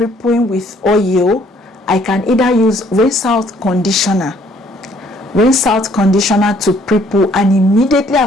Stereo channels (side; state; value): both; normal; correlation 0.63